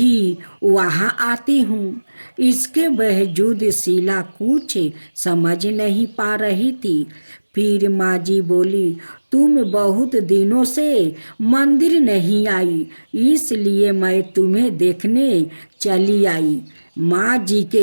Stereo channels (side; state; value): both; inverted; correlation -1.00